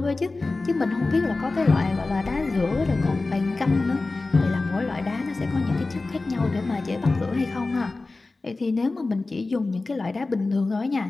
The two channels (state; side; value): quieter; right; 3.4 dB